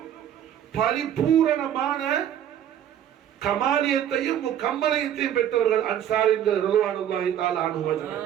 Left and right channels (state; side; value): quieter; left; 10.3 dB